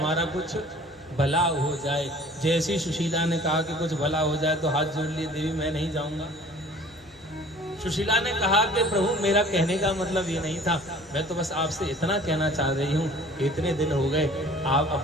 कुछ भला हो जाए। जैसी सुशीला ने कहा कि कुछ भला हो जाए तो हाथ जोड़ लिए, देवी मैं नहीं जाऊंगा। सुशीला ने कहा कि प्रभु मेरा कहने का मतलब ये नहीं था, मैं तो बस आपसे इतना कहना चाह रही हूँ, इतने दिन हो गए आप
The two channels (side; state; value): both; normal; correlation 0.49